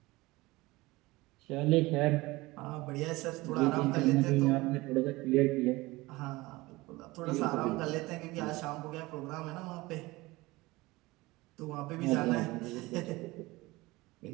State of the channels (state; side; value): quieter; left; 21.0 dB